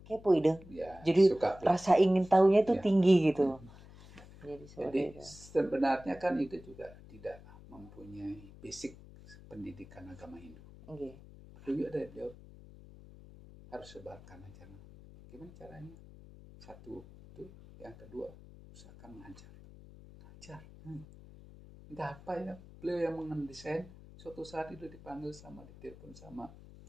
kepo ide. Ya, jadi rasa ingin tahunya itu tinggi gitu. Jadi sebenarnya kan itu juga tidak mempunyai basic pendidikan agama Hindu. Juga dari beliau harus sebarkan ajaran. Gimana caranya? Satu itu, yang kedua usahakan mengajar. Entah apa ya, beliau yang mendesain. Suatu saat itu dipanggil ditelepon sama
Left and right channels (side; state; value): left; noise; hum, 19 dB below the sound